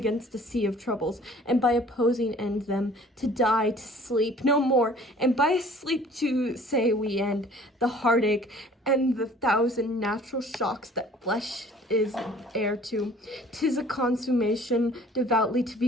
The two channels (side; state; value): both; normal; correlation 0.52